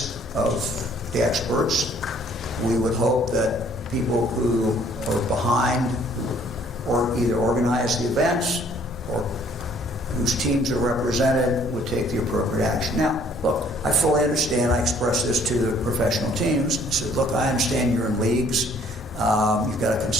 of the experts. We would hope that people who are behind or either organize the events or whose teams are represented would take the appropriate action. Now, look, I fully understand. I expressed this to the professional teams. I said, look, I understand you're in leagues. You've got to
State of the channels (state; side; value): normal; both; correlation 0.59